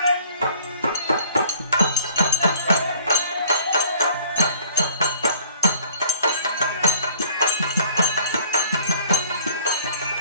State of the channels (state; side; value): inverted; both; correlation -0.52